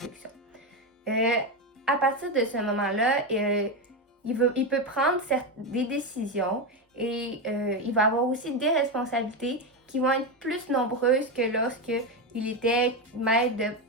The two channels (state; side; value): normal; both; correlation 0.11